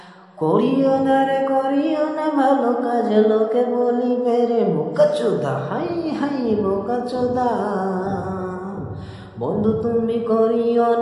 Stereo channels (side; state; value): both; identical; correlation 1.00